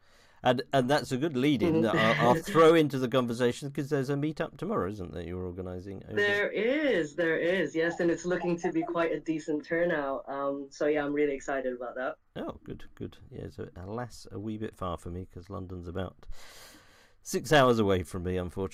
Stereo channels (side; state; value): both; identical; correlation 1.00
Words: and that's a good lead-in that I'll throw into the conversation, because there's a meetup tomorrow, isn't there? You're organising. There is, yes, and it's looking to be quite a decent turnout. So yeah, I'm really excited about that. Oh, good. Yeah, so alas, a wee bit far for me, because London's about 6 hours away from me,